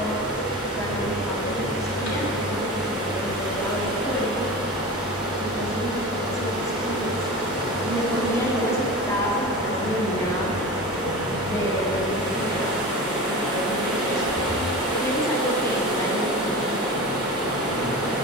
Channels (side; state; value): both; normal; correlation 0.30